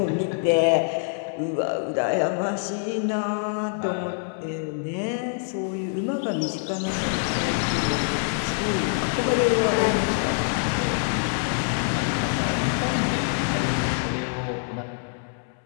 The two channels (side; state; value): right; silent; 62 dB below the other